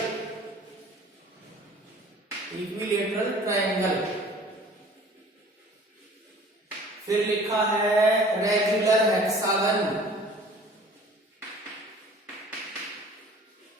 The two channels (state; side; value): normal; both; correlation 0.48